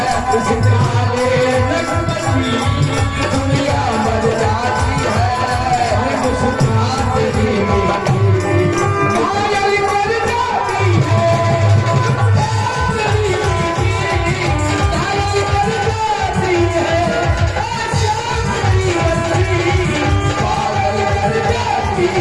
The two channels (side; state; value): both; identical; correlation 1.00